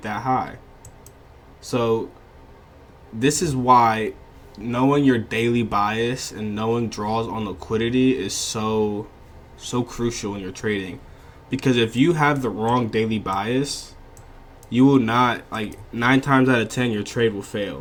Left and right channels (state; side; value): identical; both; correlation 1.00